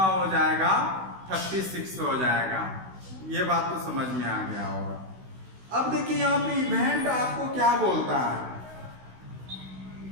हो जाएगा 36 हो जाएगा। ये बात तो समझ में आ गया होगा। अब देखिए यहाँ पे इवेंट आपको क्या बोलता है,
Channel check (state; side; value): late; left; 16 ms